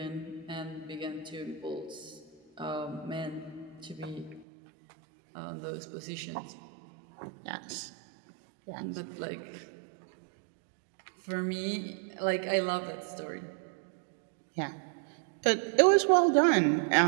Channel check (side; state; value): left; drops out; at 4.5 s